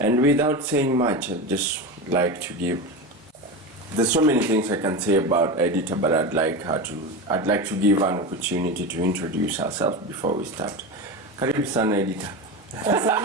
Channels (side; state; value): both; normal; correlation 0.22